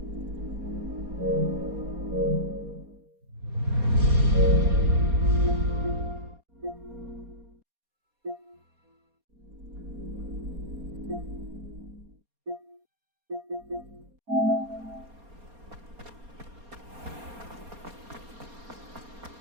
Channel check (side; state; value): left; late; 4.3 ms